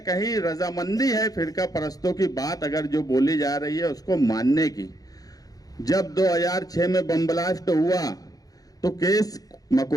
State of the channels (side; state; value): right; late; 0.18 ms